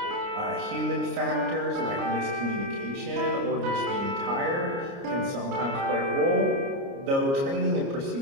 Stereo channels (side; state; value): left; late; 29 ms